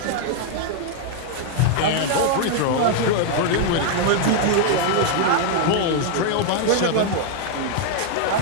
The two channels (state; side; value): different; both; correlation 0.00